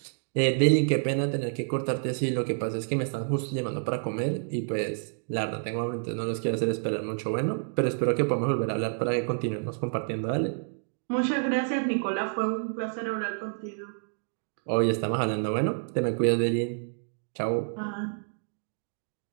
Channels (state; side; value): silent; left; digital silence